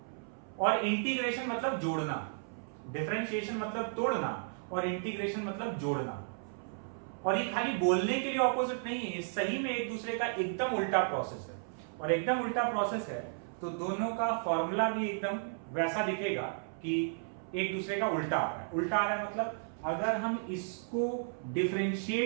और इंटीग्रेशन मतलब जोड़ना। डिफरेंशिएशन मतलब तोड़ना और इंटीग्रेशन मतलब जोड़ना। और ये खाली बोलने के लिए ऑपोजिट नहीं है, ये सही में एक दूसरे का एकदम उल्टा प्रोसेस है। और एकदम उल्टा प्रोसेस है तो दोनों का फॉर्मूला भी एकदम वैसा दिखेगा कि एक दूसरे का उल्टा आ रहा है। उल्टा आ रहा है मतलब अगर हम इसको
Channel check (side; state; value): left; silent; 55 dB below the other